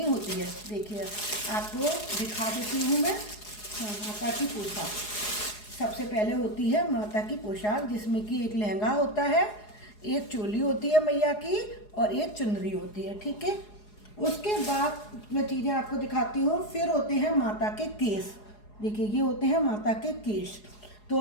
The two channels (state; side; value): late; right; 4.8 ms